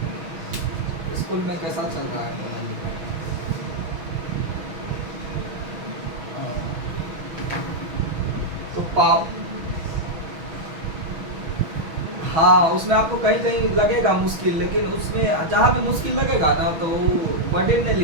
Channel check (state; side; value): late; left; 6.2 ms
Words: स्कूल में कैसा चल रहा है पढ़ाई लिखाई? तो हाँ, उसमें आपको कहीं कहीं लगेगा मुश्किल, लेकिन उसमें जहाँ भी मुश्किल लगेगा ना तो बर्डन नहीं